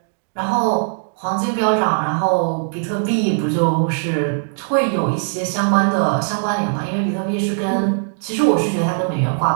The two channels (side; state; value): left; silent; digital silence